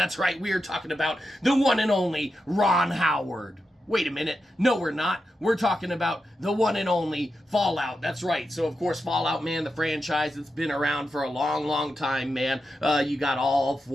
right, we're talking about the one and only Ron Howard. Wait a minute. No, we're not. We're talking about the one and only Fallout. That's right. So, of course, Fallout, man, the franchise that's been around for a long, long time, man. You got all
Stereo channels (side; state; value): both; normal; correlation 0.88